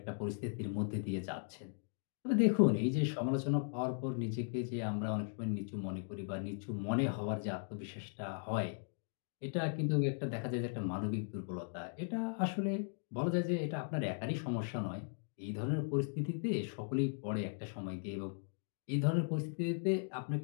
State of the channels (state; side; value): silent; right; digital silence